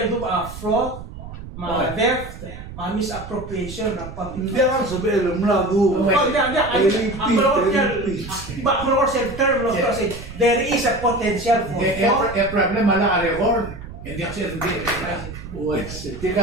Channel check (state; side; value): noise; right; rumble, 12 dB below the sound